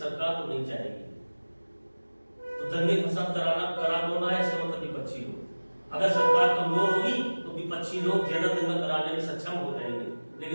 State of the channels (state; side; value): inverted; both; correlation -1.00